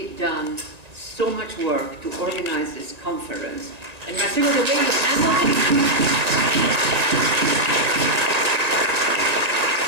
done so much work to organize this conference. And Marcelo, the way you handled it,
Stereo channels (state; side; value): late; left; 1.8 ms